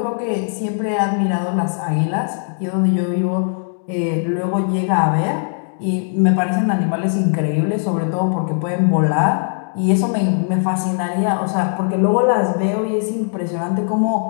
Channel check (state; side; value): silent; right; digital silence